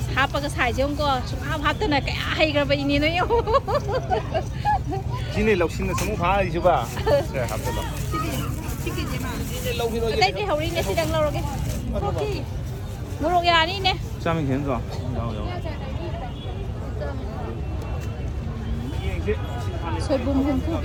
hapag sai jong ko hap ta na cái hay cái vậy ni nó yêu Sini loksin na samu pha ai chu ba. Se hap ta lo. đây thì hầu đi nè xí tầng lâu cái ok mua đồ nhà đi nè 下面田子有 soi bùm hum phu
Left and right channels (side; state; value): both; identical; correlation 1.00